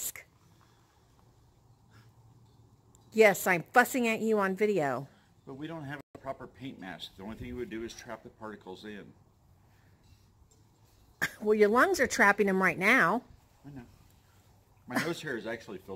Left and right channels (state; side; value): identical; both; correlation 1.00